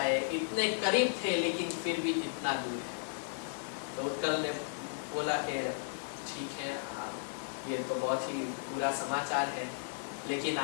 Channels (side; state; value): right; silent; 55 dB below the other